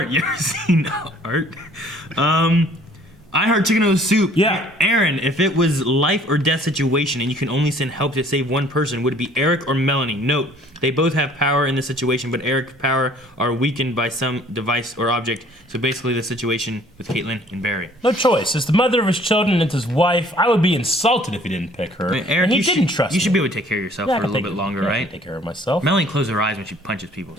You ever seen art? I heard chicken noodle soup. Yeah. Aaron, if it was life or death situation and you can only send help to save one person, would it be Eric or Melanie? Note, they both have power in this situation, but Eric's power are weakened by some device or object. So basically the situation with Caitlin and Barry. No choice. As the mother of his children and his wife, I would be insulted if he didn't pick her. I mean, Eric, and he didn't trust me. You should be able to take care of yourself for a little bit longer, right? I can take care of myself. Melanie closes her eyes when she punches people.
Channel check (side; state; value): both; normal; correlation 0.56